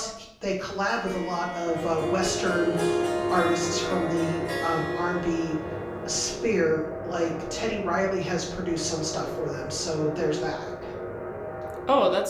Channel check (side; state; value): both; identical; correlation 1.00